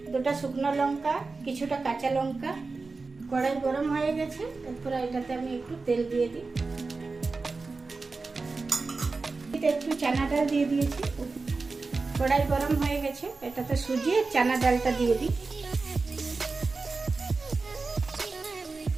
দুটো শুকনো লঙ্কা, কিছুটা কাঁচা লঙ্কা। কড়াই গরম হয়ে গেছে, তারপরে এটাতে আমি একটু তেল দিয়ে দিই। একটু চানা ডাল দিয়ে দিয়েছি। কড়াই গরম হয়ে গেছে, এটাতে সুজি আর চানা ডালটা দিয়ে দিই।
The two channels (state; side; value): quieter; left; 4.0 dB